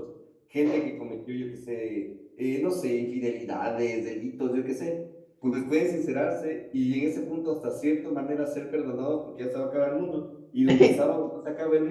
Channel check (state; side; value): identical; both; correlation 1.00